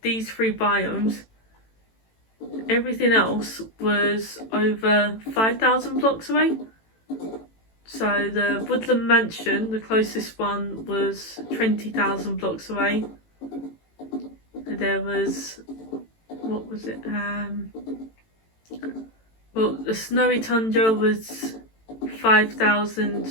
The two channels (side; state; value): right; late; 18 ms